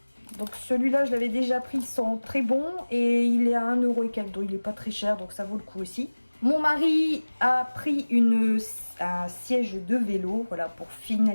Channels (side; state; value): both; inverted; correlation -1.00